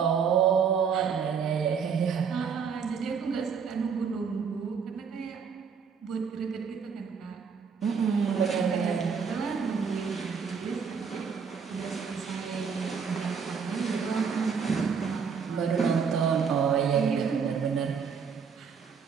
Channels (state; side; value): quieter; left; 6.3 dB